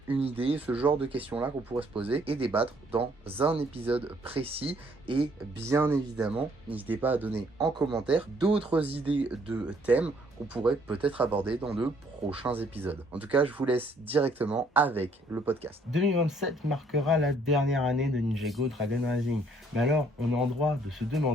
une idée, ce genre de questions-là qu'on pourrait se poser et débattre dans un épisode précis. Et bien évidemment, n'hésitez pas à donner en commentaire d'autres idées de thèmes qu'on pourrait peut-être aborder dans de prochains épisodes. En tout cas, je vous laisse directement avec le podcast. 2027 marquera la dernière année de Ninjago Dragon Rising. Mais alors, on est en droit de se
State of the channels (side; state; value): both; normal; correlation 0.65